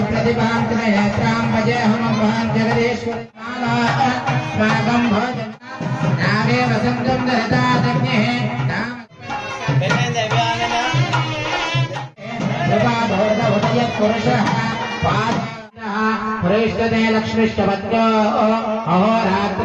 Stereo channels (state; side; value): identical; both; correlation 1.00